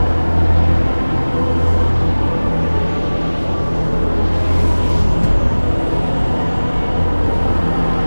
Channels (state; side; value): inverted; both; correlation -1.00